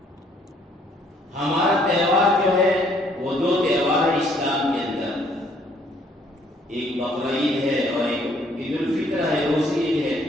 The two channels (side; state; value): both; normal; correlation 0.64